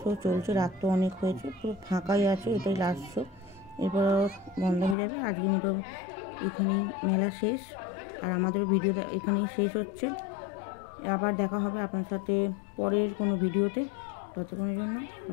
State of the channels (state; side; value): drops out; right; at 5.0 s